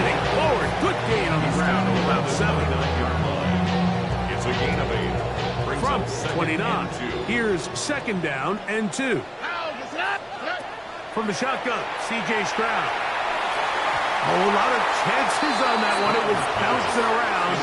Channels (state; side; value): identical; both; correlation 1.00